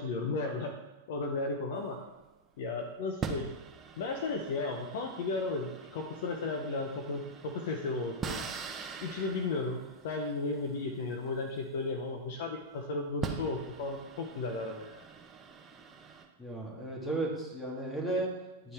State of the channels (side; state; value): both; normal; correlation -0.06